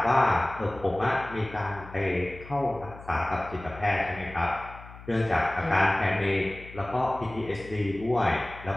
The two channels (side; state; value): left; noise; hum, 17 dB below the sound